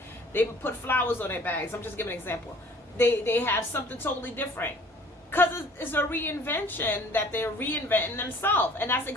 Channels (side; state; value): both; normal; correlation 0.52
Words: They put flowers on their bags. I'm just giving an example. They have something totally different because it's a reinvention that they're reinventing themselves. And that's